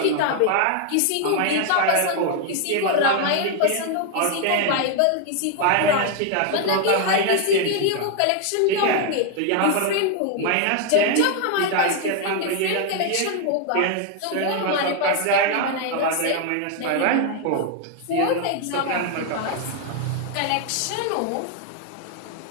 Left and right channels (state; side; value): different; both; correlation 0.00